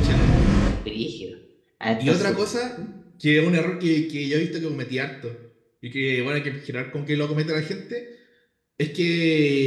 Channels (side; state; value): both; identical; correlation 1.00